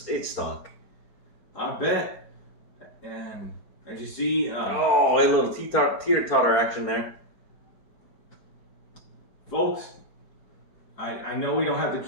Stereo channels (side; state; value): right; late; 4.3 ms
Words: I bet. And as you see, a little teeter-totter action there. Folks, I know we don't have to